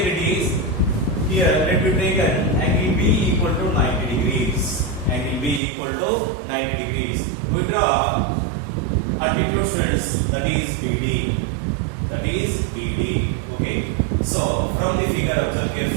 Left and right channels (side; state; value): left; drops out; at 5.6 s